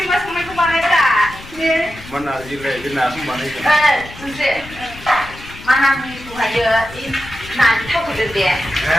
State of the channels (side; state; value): left; noise; rumble, 17 dB below the sound